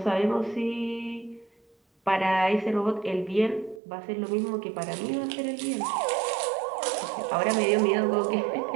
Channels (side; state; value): left; drops out; at 3.8 s